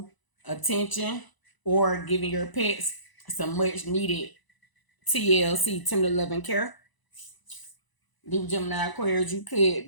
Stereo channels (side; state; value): right; late; 1.0 ms